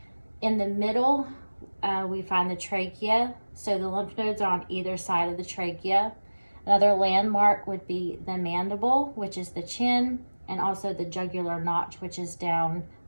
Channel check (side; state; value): both; inverted; correlation -1.00